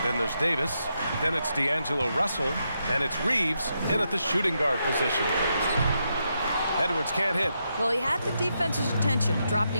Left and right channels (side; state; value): both; inverted; correlation -0.82